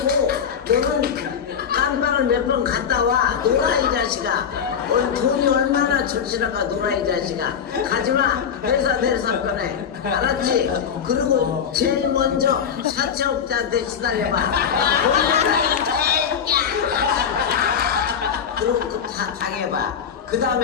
너는 깜빵을 몇 번 갔다 와. 놀아 이 자식아. 오늘 돈이 얼마나 절실한가. 놀아 이 자식아. 가지마. 회사 내려서 꺼내. 알았지? 그리고 제일 먼저 사채업자한테 시달려봐. 놀라 이 새끼야. 그리고 다 당해봐. 그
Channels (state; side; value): quieter; right; 7.5 dB